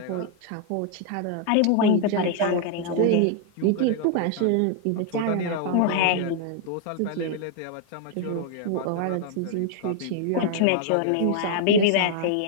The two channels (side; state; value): both; different; correlation 0.00